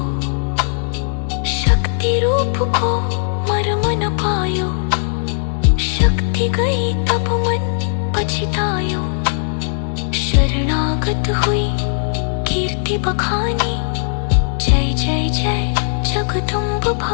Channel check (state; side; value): silent; right; digital silence